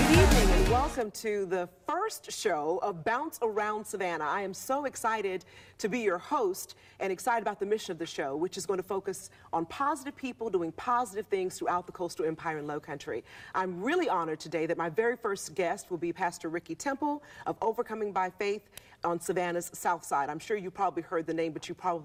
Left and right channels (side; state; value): both; identical; correlation 1.00